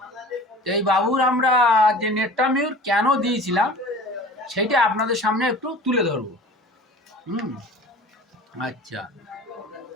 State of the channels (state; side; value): normal; both; correlation 0.41